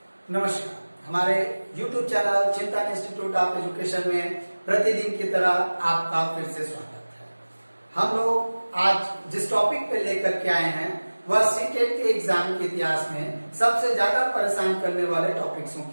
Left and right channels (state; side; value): inverted; both; correlation -1.00